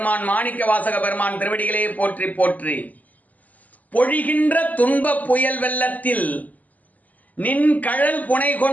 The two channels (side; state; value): right; late; 0.079 ms